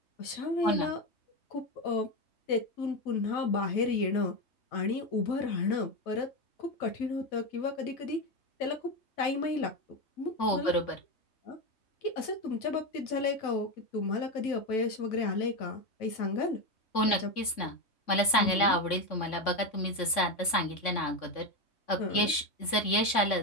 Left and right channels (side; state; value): right; late; 3.5 ms